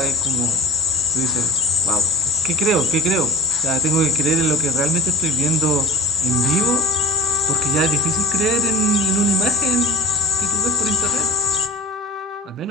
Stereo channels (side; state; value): both; normal; correlation 0.36